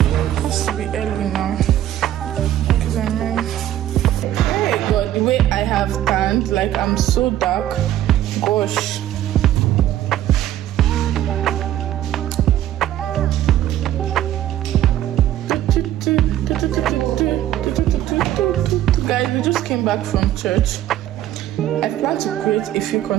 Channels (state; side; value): quieter; left; 12.6 dB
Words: has to be early now. Because I know. Hey God, the way I have tanned, like I'm so dark. Gosh. Guys, we just came back from church. I plan to create a few